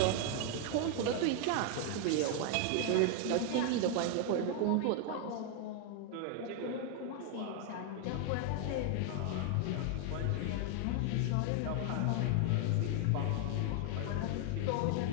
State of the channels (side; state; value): both; different; correlation 0.00